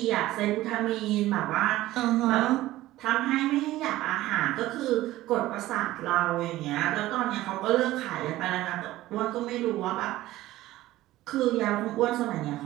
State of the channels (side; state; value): left; quieter; 16.1 dB